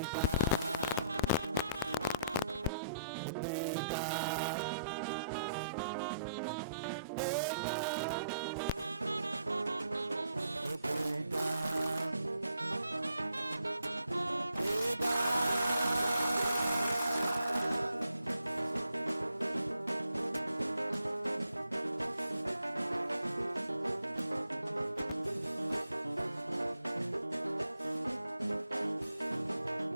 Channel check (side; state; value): both; inverted; correlation -0.72